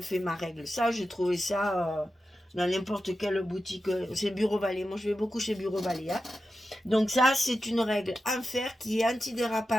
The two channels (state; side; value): normal; both; correlation 0.91